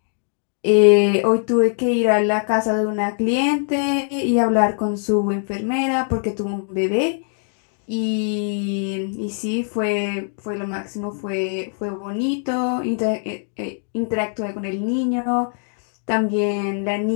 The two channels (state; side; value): silent; right; 63 dB below the other